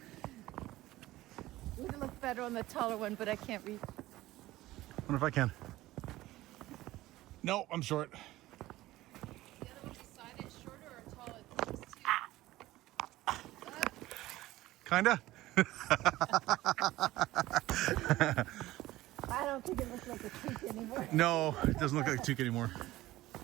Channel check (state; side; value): quieter; left; 16.8 dB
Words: Would look better on the taller one, but I can't reach. Wonder if I can. No, I'm short. The other one beside it, shorter or taller? Kinda. I don't think it looks like a toque anymore. No, it doesn't look like a toque anymore.